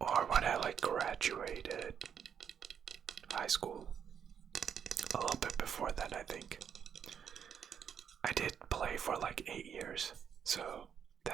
when I like graduated high school. A little bit before that, I think. I did play for like 8 years, so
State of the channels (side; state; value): left; quieter; 7.9 dB